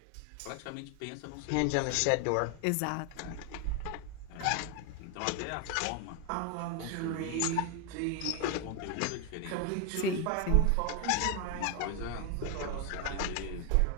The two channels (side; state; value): both; different; correlation 0.01